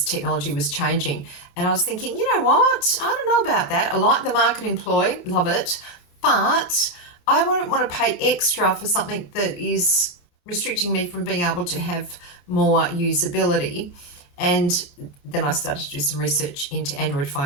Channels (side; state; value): right; late; 28 ms